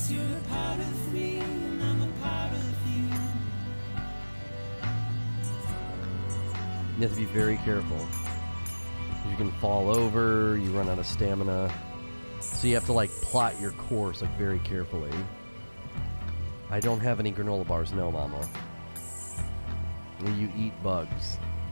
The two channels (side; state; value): both; inverted; correlation -1.00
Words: you're a part of me, and I'm a part of you. You have to be very careful. You can fall over, you run out of stamina. So you have to like plot your course like very carefully. I don't have any granola bars, no, mama. You eat bugs.